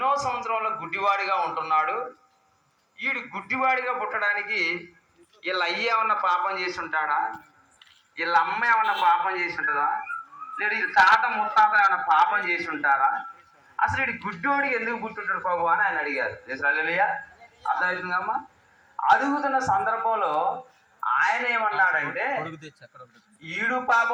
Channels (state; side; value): identical; both; correlation 1.00